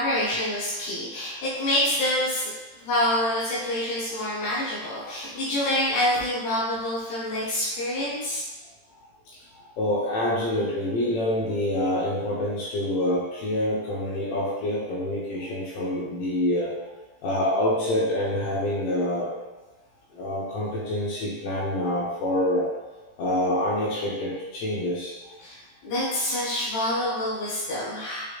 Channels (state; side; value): late; right; 18 ms